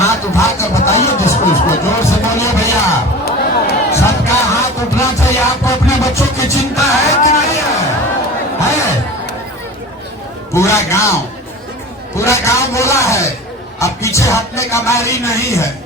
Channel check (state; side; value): normal; both; correlation 0.36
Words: उठाकर बताइए जिसको, उसको जोर से बोलिए भैया। सबका हाथ उठना चाहिए। आपको अपने बच्चों की चिंता है कि नहीं है? पूरा गांव बोला है। अब पीछे हटने का बारी नहीं है।